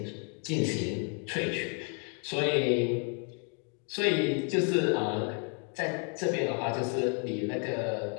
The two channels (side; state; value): right; quieter; 39.9 dB